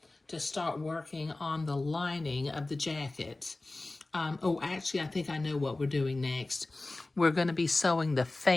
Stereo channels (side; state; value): right; quieter; 3.0 dB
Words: to start working on the lining of the jacket. Oh, actually, I think I know what we're doing next. We're going to be sewing the